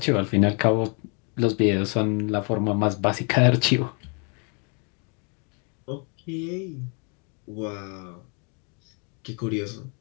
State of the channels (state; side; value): quieter; right; 36.6 dB